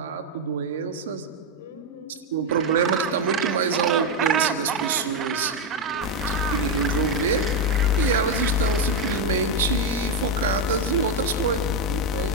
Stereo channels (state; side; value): normal; both; correlation 0.05